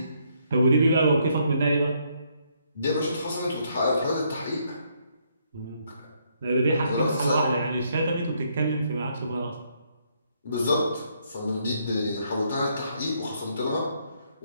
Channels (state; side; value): inverted; both; correlation -0.72